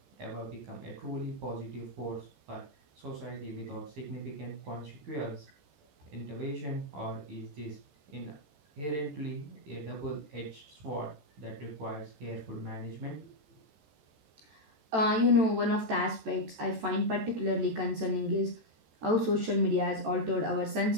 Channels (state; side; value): late; left; 14 ms